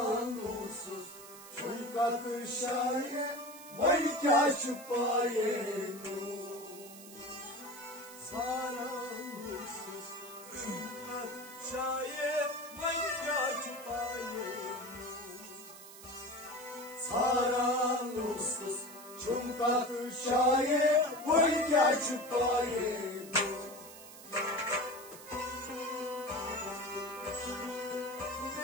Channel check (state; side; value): noise; right; hiss, 16 dB below the sound